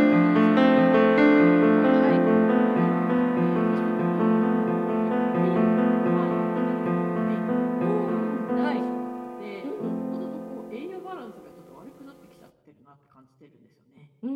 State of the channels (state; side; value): identical; both; correlation 1.00